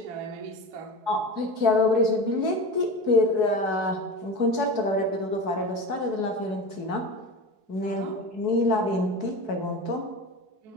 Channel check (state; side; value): late; left; 4.7 ms